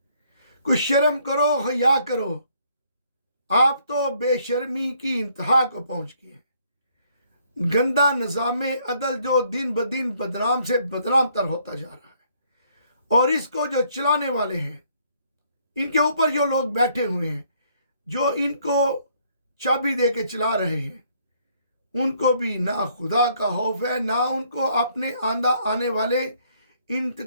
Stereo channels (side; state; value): both; inverted; correlation -0.66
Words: कुछ शर्म करो, हया करो, आप तो बेशर्मी की इंतहा को पहुंच गए हैं। गंदा निज़ाम अदल जो दिन ब दिन बदनाम से बदनाम तर होता जा रहा है और इसको जो चलाने वाले हैं, इनके ऊपर जो लोग बैठे हुए हैं, जो इनको चाबी दे के चला रहे हैं, उनको भी ना खुदा का खौफ है, ना उनको अपने आने वाले इन